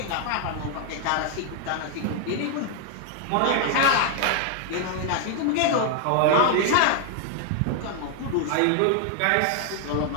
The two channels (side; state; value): both; different; correlation 0.00